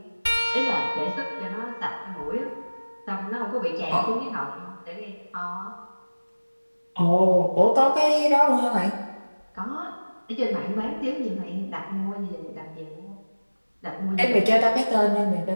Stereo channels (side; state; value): both; inverted; correlation -1.00